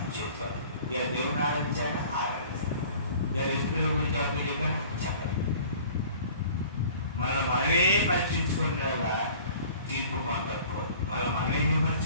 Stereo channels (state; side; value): inverted; both; correlation -0.47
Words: చేసుకోవాలి, ఇలా దేవుని ఆరాధించాలని ఆరాధించాలి, ఇలా రైతుల గురించి అప్పుడు చెప్పాను చెప్పాలి. మనల్ని మనమే పరీక్షించుకునేలా తీర్పు పొందకపోదు. మనమే